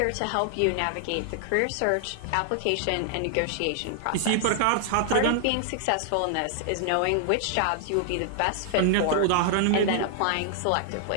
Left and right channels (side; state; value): both; different; correlation 0.00